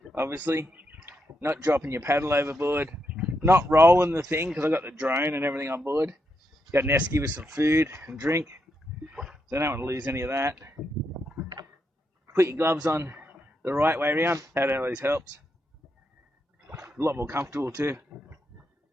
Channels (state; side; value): normal; both; correlation 0.82